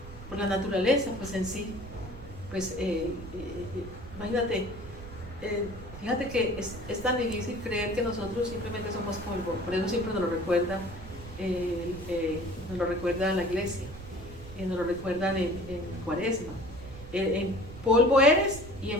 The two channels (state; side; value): noise; right; rumble, 14 dB below the sound